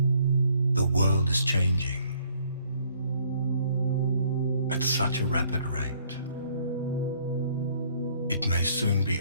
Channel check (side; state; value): both; inverted; correlation -0.63